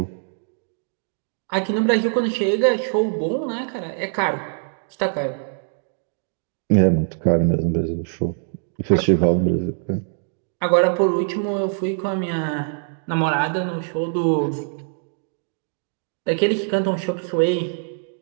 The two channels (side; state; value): left; silent; digital silence